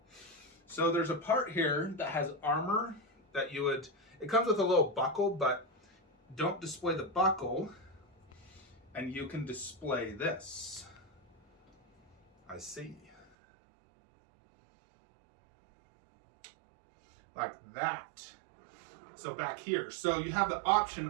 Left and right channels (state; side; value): drops out; left; at 13.3 s